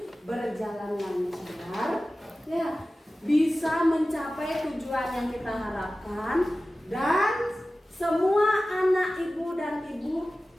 berjalan lancar, ya, bisa mencapai tujuan yang kita harapkan, dan semua anak ibu dan ibu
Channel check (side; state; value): both; normal; correlation 0.96